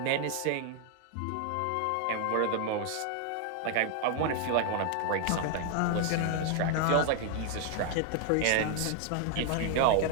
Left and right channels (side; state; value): both; different; correlation 0.00